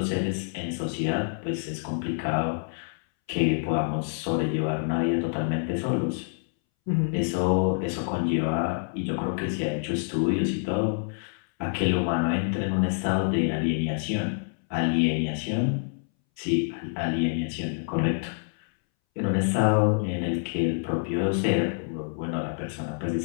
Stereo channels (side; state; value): right; silent; 60 dB below the other